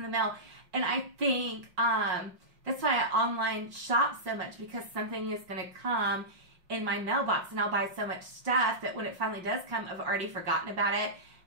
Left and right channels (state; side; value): late; left; 5.5 ms